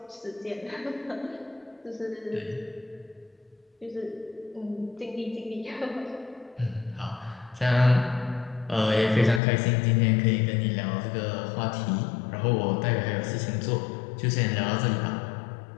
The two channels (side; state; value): right; drops out; at 9.4 s